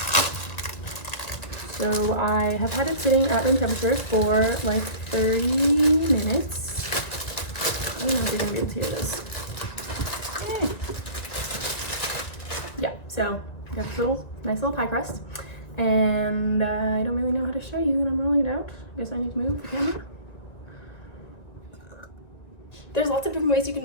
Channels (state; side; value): late; right; 1.9 ms